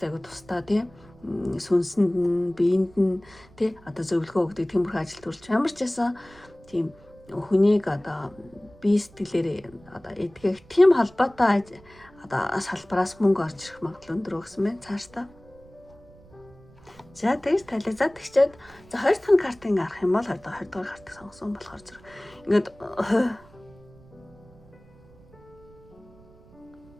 аягүй тусдаа те сүнсэнд нь биеинд нь те одоо зөвлөгөө өгдөг тиймэрхүү ажил төрөлч ямар ч байсан тийм хүнийг одоо бие сэтгэлээр одоо эдгэх тийм холбоотой одоо салбараас мөнгө орж ирэх магадлал өндөр өгсөн байна цаашдаа. За тэгж тализаад тэгчээд за 2 дахь картыг арах юм бол 20 дугаар картыг сонгосон болохоор зэрэг ингээд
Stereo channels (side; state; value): right; noise; rumble, 25 dB below the sound